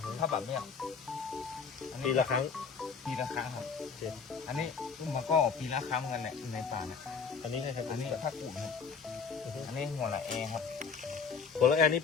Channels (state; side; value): quieter; right; 5.8 dB